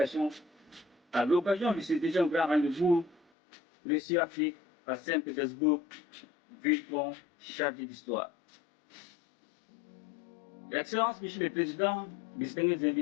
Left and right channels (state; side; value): drops out; right; at 3.2 s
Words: à l'occasion de ce déjà grand rendez-vous Russie-Afrique à Saint-Pétersbourg, ville-pont chargée d'histoire. Excellence, Monsieur le Président, distingués